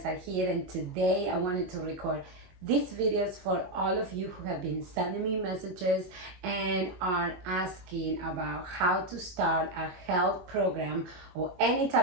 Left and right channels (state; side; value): late; left; 22 ms